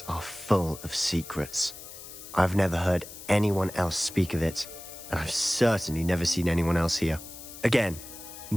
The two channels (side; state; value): left; noise; hiss, 14 dB below the sound